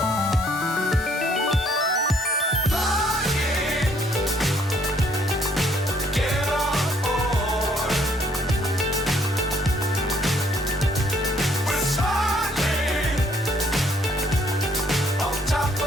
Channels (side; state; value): both; normal; correlation 0.65